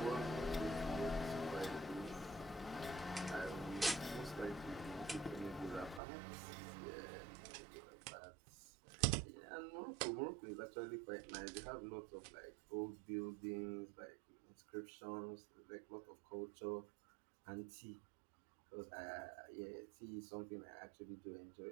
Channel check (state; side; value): drops out; left; at 6.0 s